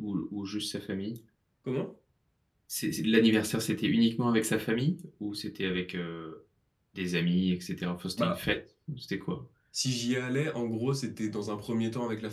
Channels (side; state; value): both; identical; correlation 1.00